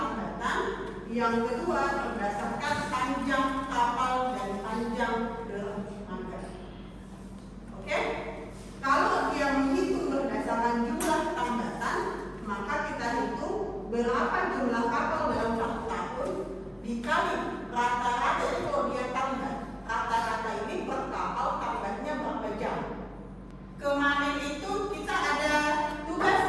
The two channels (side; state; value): both; identical; correlation 1.00